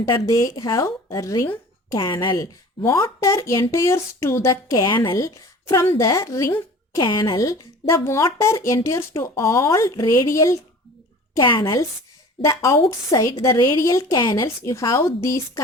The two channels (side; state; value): both; normal; correlation 0.43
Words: they have a ring canal. Water enters to the canal. From the ring canal, the water enters to all radial canals. The outside the radial canals, you have these